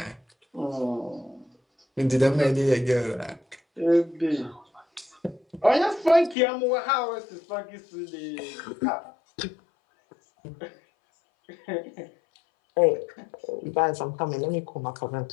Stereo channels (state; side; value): drops out; right; at 6.4 s